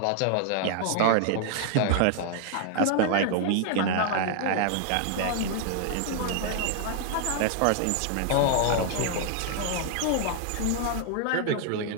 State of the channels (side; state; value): both; different; correlation 0.00